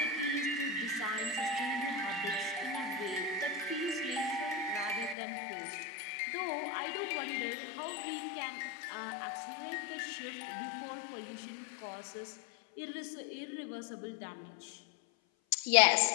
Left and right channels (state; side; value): drops out; right; at 5.2 s